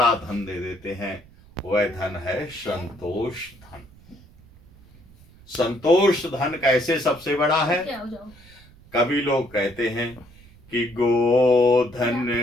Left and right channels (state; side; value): noise; right; rumble, 24 dB below the sound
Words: धन दे देते हैं। वह धन है संतोष धन। संतोष धन कैसे सबसे बड़ा है? कभी लोग कहते हैं कि गोधन,